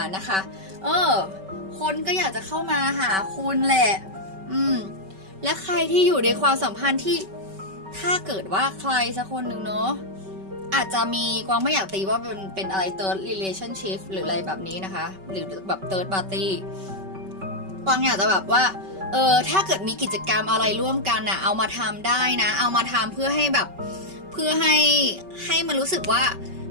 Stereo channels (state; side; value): late; left; 5.2 ms